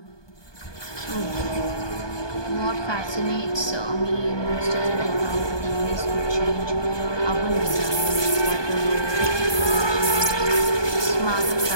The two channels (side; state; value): right; late; 1.2 ms